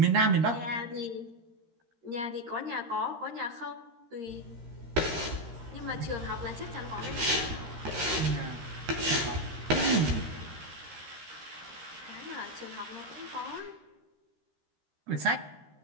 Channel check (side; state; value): left; late; 13 ms